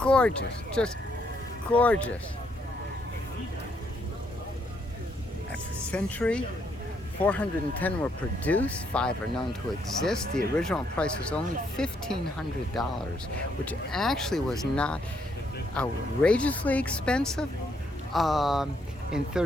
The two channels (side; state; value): both; normal; correlation 0.73